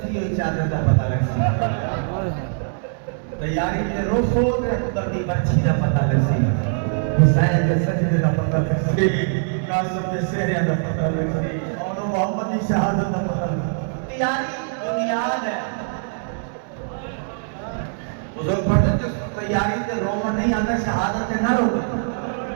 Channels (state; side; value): silent; left; 64 dB below the other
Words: ہوئی چادر دا پتہ لگ سی تیاری تے روسو تے اترتی بچی دا پتہ لگ سی حسین کے سجدے دا پتہ لگ سی قاسم کے سہرے دا پتہ لگ سی اور محمد کی شہادت دا پتہ لگ سی تیاری بنیاد ہے بزرگ پڑھتے جو تیاری تے رومن نہیں آتا شہادت نہ رو